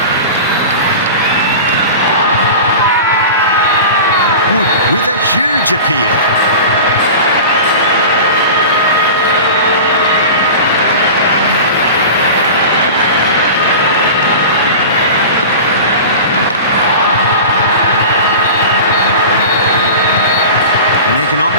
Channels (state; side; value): inverted; both; correlation -0.33